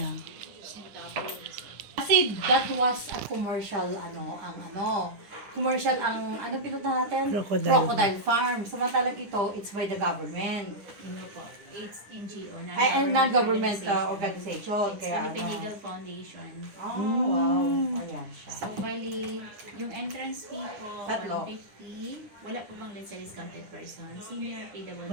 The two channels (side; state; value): left; late; 10 ms